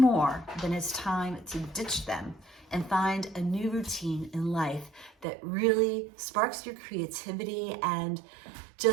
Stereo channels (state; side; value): drops out; left; at 5.2 s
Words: then it's time to ditch them and find a new routine in life that really sparks your creativity and